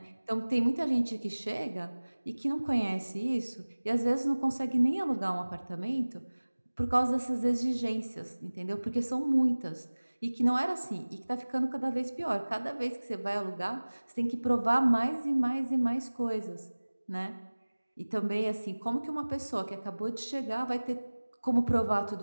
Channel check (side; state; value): both; inverted; correlation -1.00